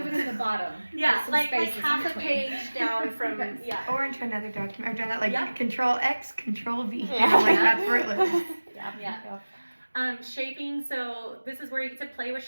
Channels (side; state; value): both; inverted; correlation -1.00